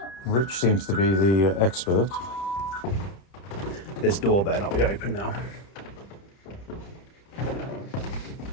Rich seems to be the expert. This door better not be open now.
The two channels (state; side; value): late; right; 30 ms